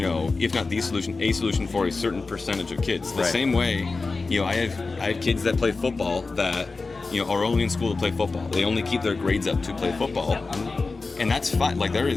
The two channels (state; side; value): quieter; right; 3.9 dB